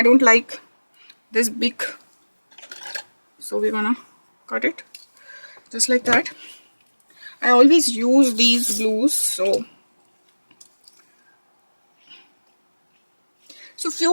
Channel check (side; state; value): both; inverted; correlation -1.00